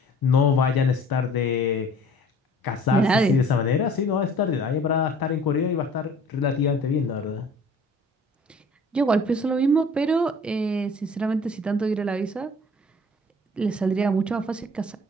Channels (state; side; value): normal; both; correlation 0.50